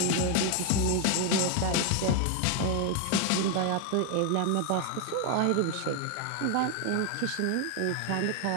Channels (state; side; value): different; both; correlation 0.00